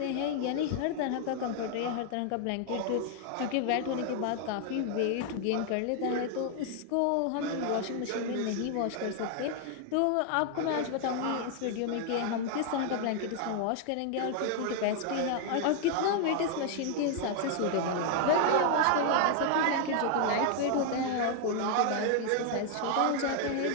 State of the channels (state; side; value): different; both; correlation 0.00